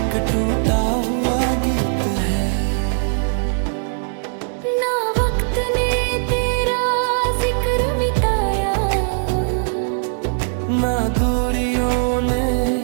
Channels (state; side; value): silent; left; digital silence